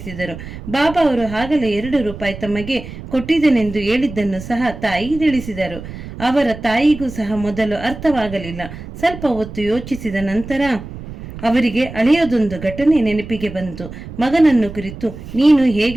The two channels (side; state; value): right; noise; rumble, 12 dB below the sound